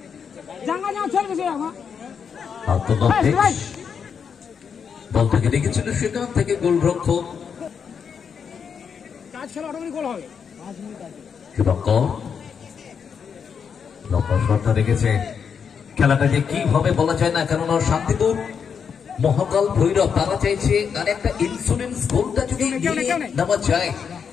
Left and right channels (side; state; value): right; quieter; 6.8 dB